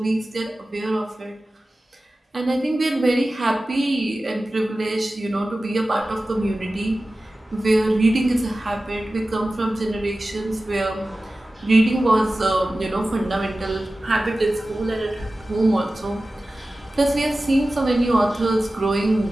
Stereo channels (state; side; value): normal; both; correlation 0.96